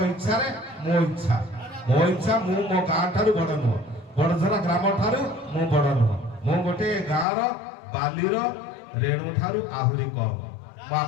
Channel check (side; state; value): right; drops out; at 7.2 s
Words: ଇଚ୍ଛାରେ ମୋ ଇଚ୍ଛା। ମୋ ଇଚ୍ଛା, ମୁଁ ମୋ ଗାଁ ଠାରୁ ବଡ଼ ନୁହଁ, ବଡ଼ଝରା ଗ୍ରାମ ଠାରୁ ମୁଁ ବଡ଼ ନୁହଁ। ମୁଁ ଗୋଟେ ଗାଁର ବାଲିର ରେଣୁ ଠାରୁ ଆହୁରି କମ୍। ମୁଁ